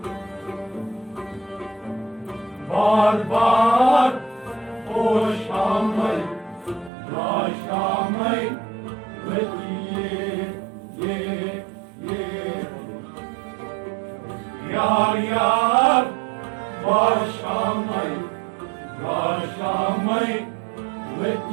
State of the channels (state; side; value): drops out; left; at 6.9 s